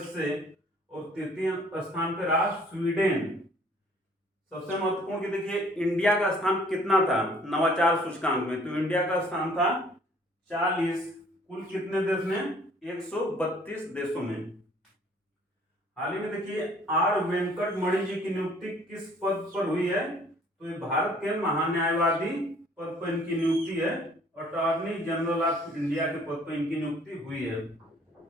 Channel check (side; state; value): both; normal; correlation 0.57